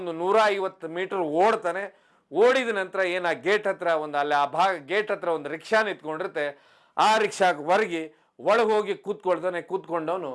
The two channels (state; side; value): identical; both; correlation 1.00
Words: 150 ಮೀಟರ್ ಓಡ್ತಾನೆ. ಓಡಿದ ನಂತರ ಏನು ಆ ಗೇಟ್ ಹತ್ರ ಅಲ್ಲಿ ಆ ಗೇಟ್ ಹತ್ರ ಒಂದು ರಿಕ್ಷಾ ನಿಂತ್ಕೊಂಡಿರುತ್ತೆ, ಆ ರಿಕ್ಷಾಗೆ ಒಳಗೆ ಹೋಗಿ ಕೂತ್ಕೊಂಡವನು